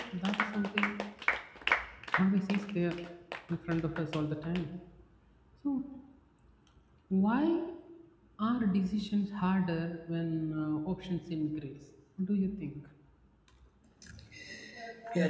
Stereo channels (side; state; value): both; identical; correlation 1.00